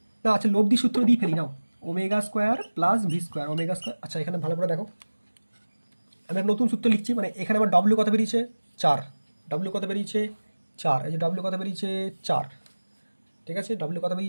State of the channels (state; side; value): inverted; both; correlation -1.00